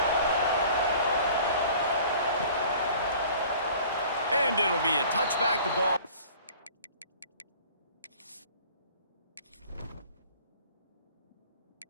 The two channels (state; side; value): inverted; both; correlation -0.48